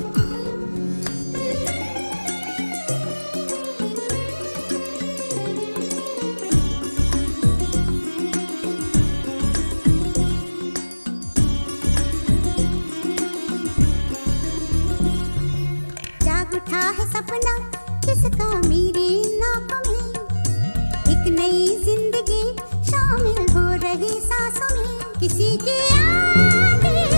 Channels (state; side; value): inverted; both; correlation -1.00